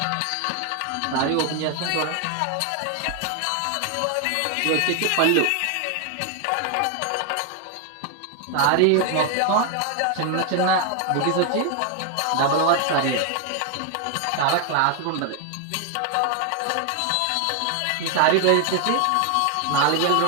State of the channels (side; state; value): both; different; correlation 0.00